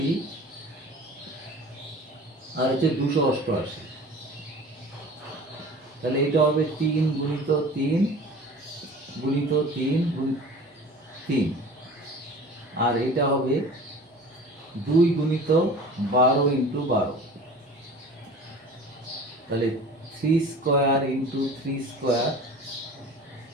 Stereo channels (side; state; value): both; normal; correlation 0.41